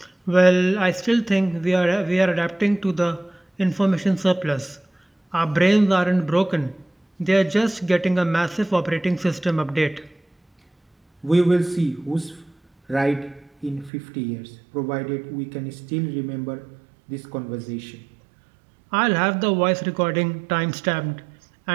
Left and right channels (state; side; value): drops out; left; at 13.9 s